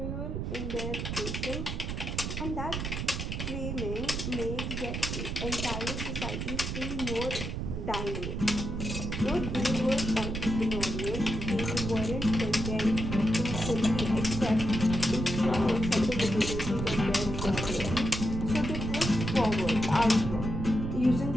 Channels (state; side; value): noise; right; rumble, 3 dB below the sound